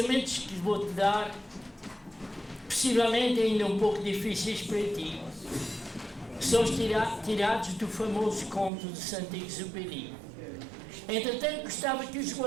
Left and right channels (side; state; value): left; drops out; at 8.7 s